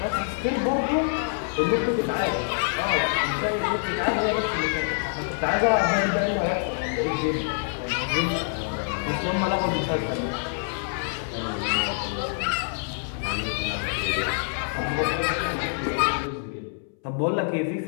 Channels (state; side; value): silent; right; 61 dB below the other